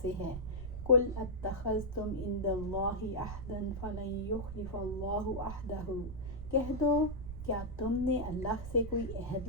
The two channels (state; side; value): noise; right; rumble, 8 dB below the sound